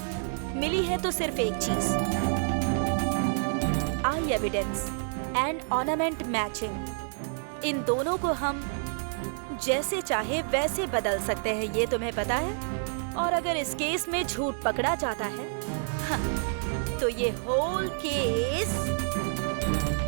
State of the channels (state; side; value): silent; left; digital silence